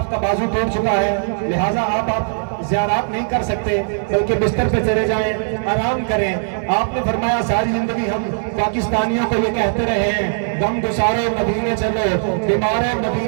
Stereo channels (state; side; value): silent; left; digital silence